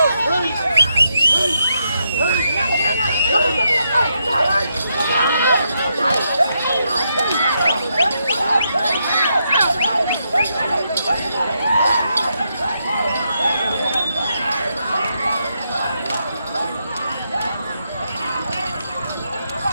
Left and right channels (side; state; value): both; inverted; correlation -0.81